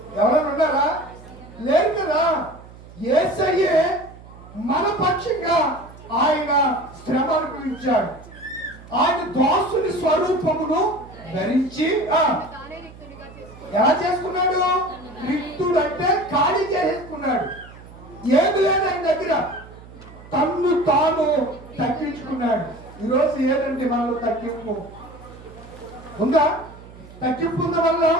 ఎవరైనా ఉన్నారా? లేదు కదా. యేసయ్యే మన పక్షంగా ఆయన శ్రమ అనుభవించాడు. ఆయన దాసుని స్వరూపమును ధరించి ఎలా చేసుకున్నాడు? రిక్తుడు అంటే ఖాళీ చేసుకున్నాడు. ఏది లేదు ఆయన దగ్గర. తన్ను తాను తగ్గించుకున్నాడు. ఈరోజు ఏదండి మనలో తగ్గింపు ఉందా? తగ్గింపు ఉన్న వల్ల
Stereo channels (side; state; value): right; noise; hum, 19 dB below the sound